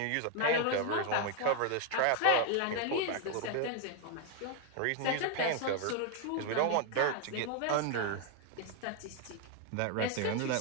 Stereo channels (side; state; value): both; different; correlation 0.01